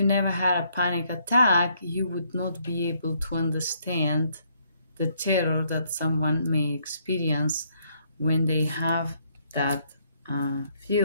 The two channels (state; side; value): inverted; both; correlation -0.70